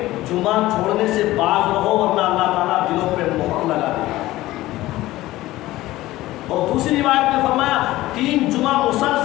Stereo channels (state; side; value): quieter; right; 16.9 dB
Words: جمعہ چھوڑنے سے باز رہو ورنہ اللہ تعالیٰ دلوں پہ مہر لگا دے. اور دوسری روایت میں فرمایا 3 جمعہ